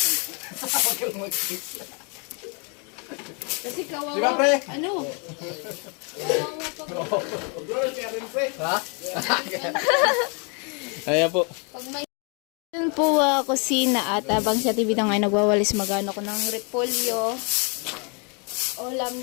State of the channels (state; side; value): quieter; right; 35.3 dB